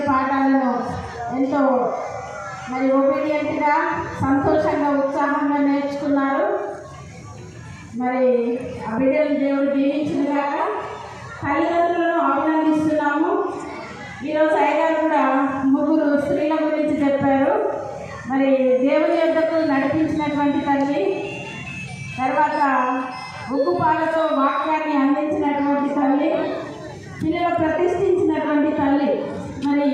పాఠాలను ఎంతో మరి ఒబీడియంట్గా సంతోషంగా ఉత్సాహంగా నేర్చుకున్నారు. మరి ఆ బిడ్డలు దేవుడు దీవించినగాక. తల్లిదండ్రులను అభినందిస్తున్నాము. ఈరోజు అయ్యగారు కూడా 3 స్త్రీల గురించి చెప్పారు. మరి దేవుని యొద్దకు నడిపించినటువంటి తల్లి, తర్వాత ఉగ్గుపాలతో వాక్యాన్ని అందించినటువంటి తల్లి, పిల్లలు ప్రతిష్ఠించినటువంటి తల్లి. మరి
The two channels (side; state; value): both; identical; correlation 1.00